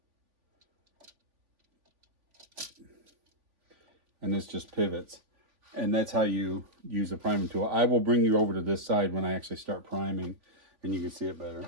And this just pivots. And that's how you use the priming tool. I will bring you over to this side when I actually start priming, and you can see it better.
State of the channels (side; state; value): left; late; 3.5 ms